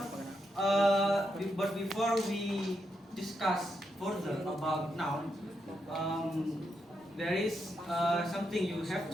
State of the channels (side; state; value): both; normal; correlation 0.82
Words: we discuss further about noun, there is something you have